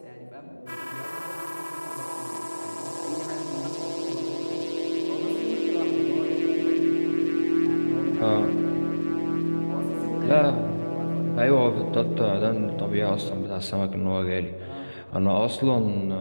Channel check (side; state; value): both; inverted; correlation -1.00